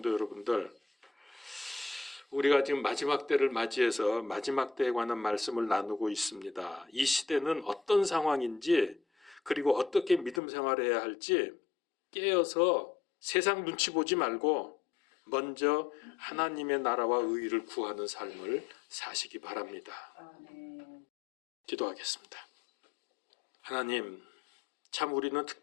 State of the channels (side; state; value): right; drops out; at 10.4 s